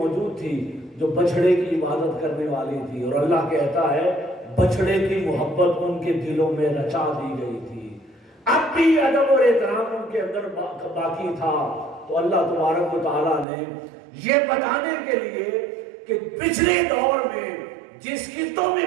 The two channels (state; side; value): drops out; left; at 13.5 s